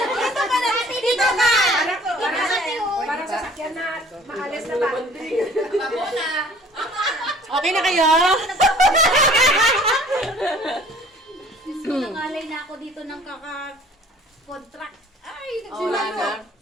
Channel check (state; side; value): normal; both; correlation 0.51